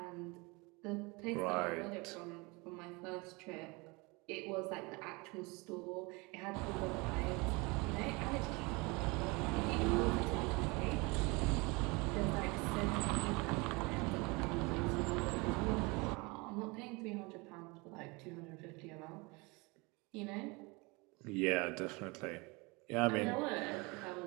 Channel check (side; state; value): left; quieter; 26.7 dB